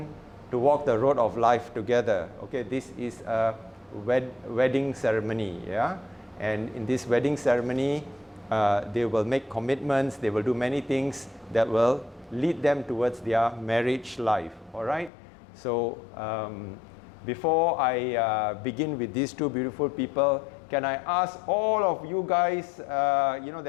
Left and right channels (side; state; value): right; drops out; at 15.1 s